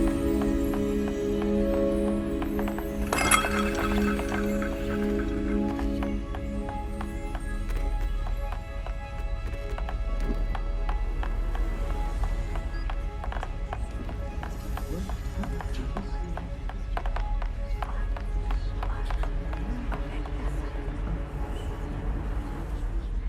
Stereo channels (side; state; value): both; identical; correlation 1.00